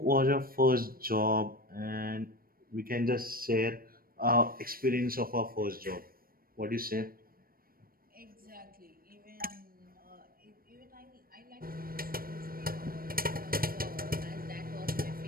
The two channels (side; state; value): left; late; 0.43 ms